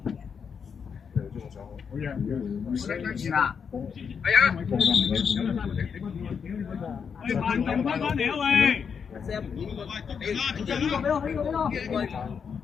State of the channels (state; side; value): quieter; right; 6.5 dB